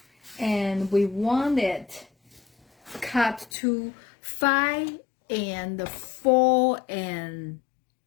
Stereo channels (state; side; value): drops out; right; at 3.5 s